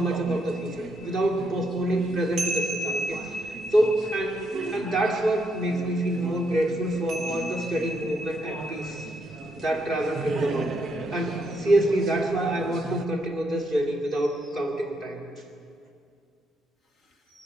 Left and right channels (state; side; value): normal; both; correlation 0.77